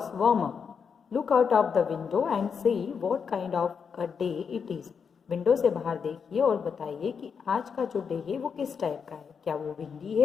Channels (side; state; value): right; quieter; 6.3 dB